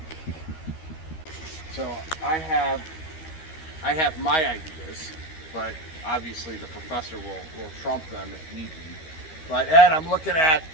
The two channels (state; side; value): late; right; 13 ms